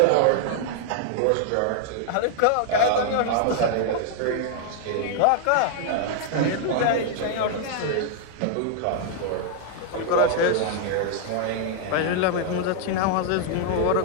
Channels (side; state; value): both; different; correlation 0.00